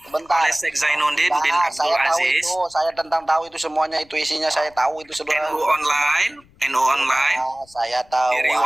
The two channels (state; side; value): noise; left; rumble, 29 dB below the sound